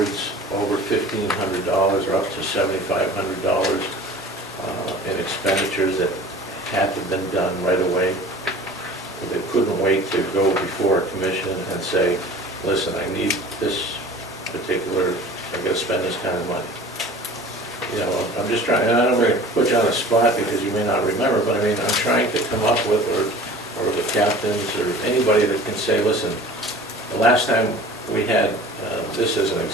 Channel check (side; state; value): both; normal; correlation 0.43